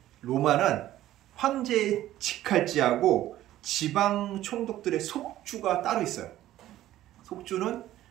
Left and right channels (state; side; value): quieter; left; 13.9 dB